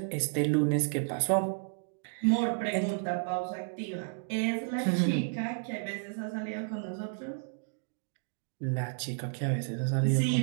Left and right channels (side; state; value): left; silent; digital silence